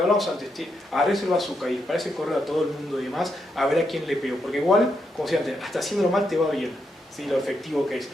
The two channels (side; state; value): both; normal; correlation 0.81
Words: hablamos antes, agarres el bazooka y para ese correo a todo el mundo y demás, a ver a quién le pego, porque igual, como decía antes, hasta haciéndolo mal te va bien, ¿sí? Lo efectivo que es.